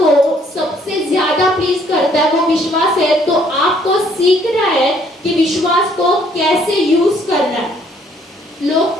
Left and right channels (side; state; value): both; normal; correlation 0.64